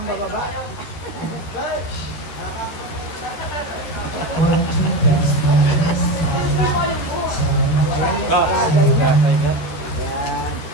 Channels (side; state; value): right; late; 13 ms